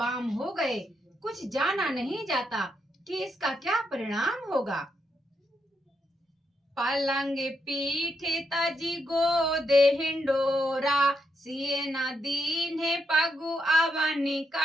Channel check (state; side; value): normal; both; correlation 0.81